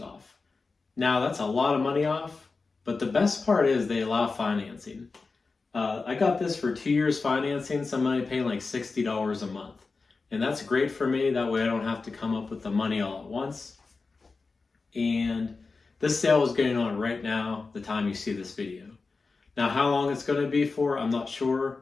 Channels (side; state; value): right; quieter; 4.1 dB